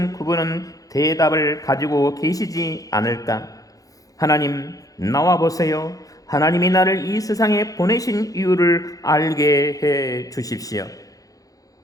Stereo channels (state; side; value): late; right; 0.17 ms